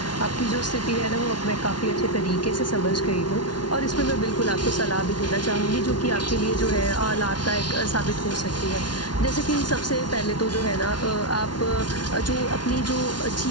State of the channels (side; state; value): right; late; 0.70 ms